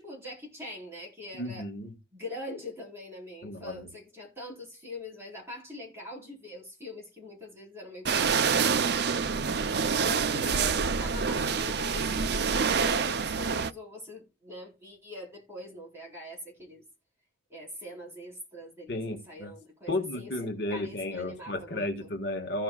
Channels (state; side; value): quieter; left; 3.8 dB